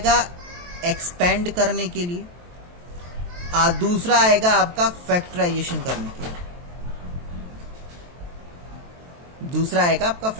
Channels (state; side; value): late; left; 23 ms